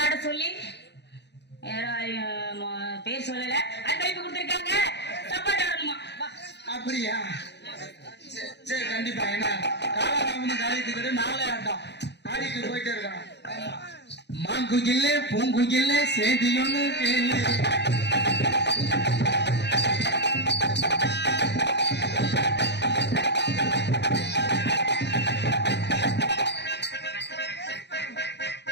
ஆட சொல்லி பேர் சொல்லல அது கைப்பு கொடுத்துருக்காங்க. தப்பாட்ட ஆடணுமா. அப்படியா சரி கண்டிப்பா. ஏன்னா காலாராமனு காலித்துக்கிட்டு நாளே ஆட்டம் ஆடிட்டு போயிட்டே இருக்கான். மாங்குயில்ல பூங்குயில்ல சேதி ஒண்ணு கேளு.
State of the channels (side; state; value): right; late; 0.50 ms